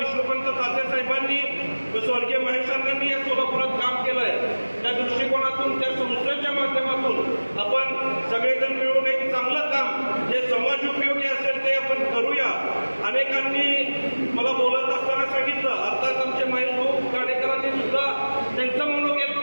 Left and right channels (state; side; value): inverted; both; correlation -1.00